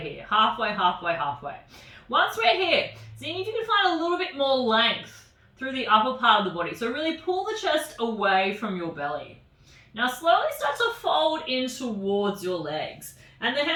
Halfway, halfway, halfway. Once we're here, see if you can find a little bit more length through the upper part of the body. So really pull the chest away from your belly. Now slowly start to fold in towards your legs. And the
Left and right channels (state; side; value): identical; both; correlation 1.00